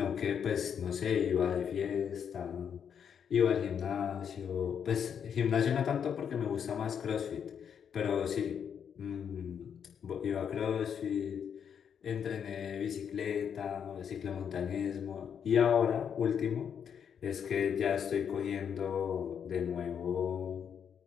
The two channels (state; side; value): quieter; right; 7.8 dB